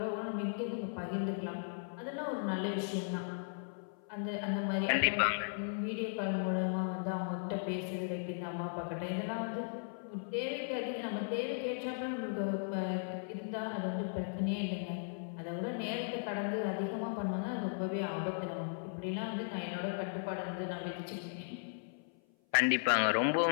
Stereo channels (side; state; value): right; silent; 53 dB below the other